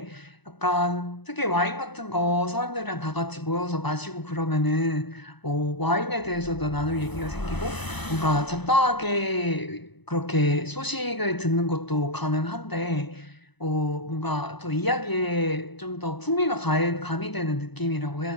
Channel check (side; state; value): right; late; 0.99 ms